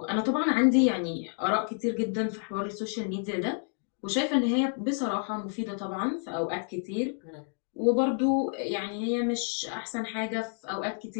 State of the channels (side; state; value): right; silent; 57 dB below the other